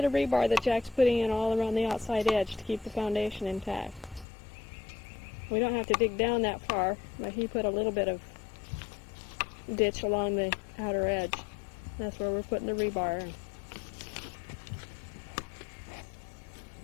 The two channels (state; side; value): drops out; right; at 4.2 s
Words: of rebar that Jack's putting in all around the outside edge to keep the foundation intact. We don't have to dig down that far, but he put a little bit of ditch along the outer edge. That's where we're putting the rebar in.